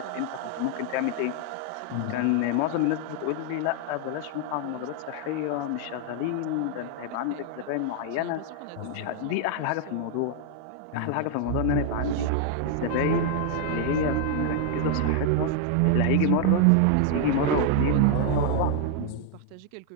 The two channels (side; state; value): both; different; correlation 0.00